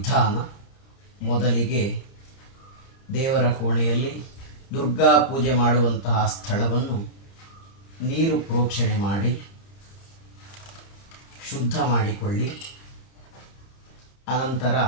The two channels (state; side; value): late; right; 30 ms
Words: ಮೊದಲಿಗೆ ದೇವರ ಕೋಣೆಯಲ್ಲಿ ದುರ್ಗಾ ಪೂಜೆ ಮಾಡುವಂತಹ ಸ್ಥಳವನ್ನು ನೀರು ಪ್ರೋಕ್ಷಣೆ ಮಾಡಿ ಶುದ್ಧ ಮಾಡಿಕೊಳ್ಳಿ. ಅನಂತರ